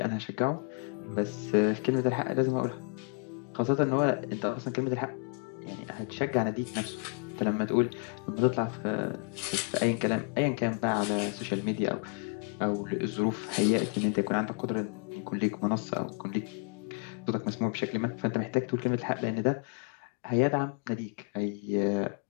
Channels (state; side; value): quieter; right; 39.0 dB